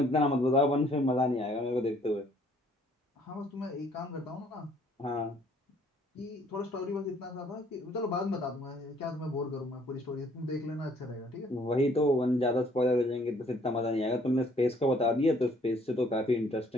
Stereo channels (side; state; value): both; normal; correlation 0.62